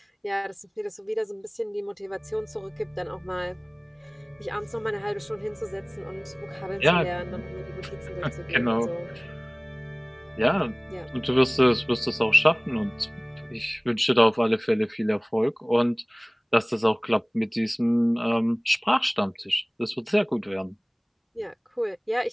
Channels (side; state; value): both; identical; correlation 1.00